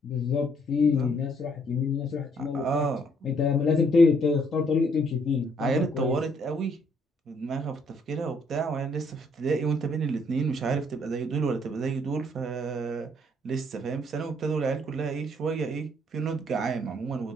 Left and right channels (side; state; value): both; normal; correlation 0.66